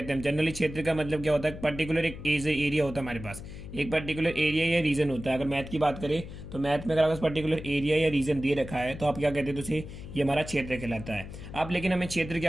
हैं। जनरली क्षेत्र का मतलब क्या होता है, पर्टिकुलर एक एरिया होता है हमारे पास, एक पर्टिकुलर एरिया या रीजन होता है। अगर मैथ की बात करें तो मैथ में अगर आपके पर्टिकुलर एरिया या रीजन दे रखा है तो आप क्या कहते हैं, तो उसे ये हमारा क्षेत्र कहलाता है। अब लेकिन हमें क्षेत्र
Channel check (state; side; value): noise; left; hum, 12 dB below the sound